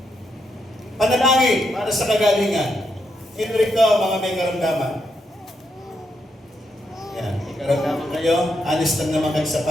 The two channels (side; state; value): both; normal; correlation 0.80